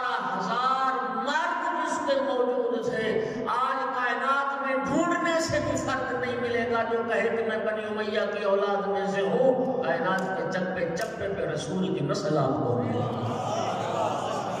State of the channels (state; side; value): identical; both; correlation 1.00